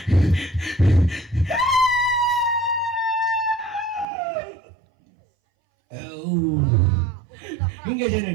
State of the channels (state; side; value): drops out; left; at 4.0 s